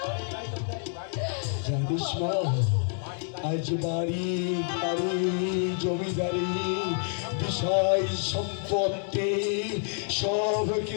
জানিস মা, আজ বাড়ি গাড়ি জমিদারি বিষয় সম্পত্তি সব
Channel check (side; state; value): right; silent; 59 dB below the other